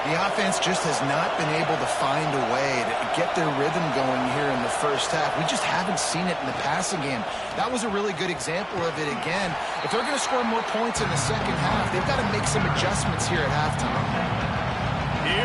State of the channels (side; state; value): both; identical; correlation 1.00